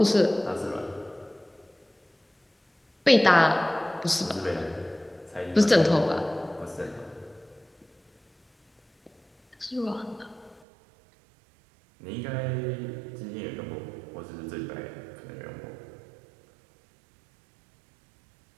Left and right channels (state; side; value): drops out; left; at 10.6 s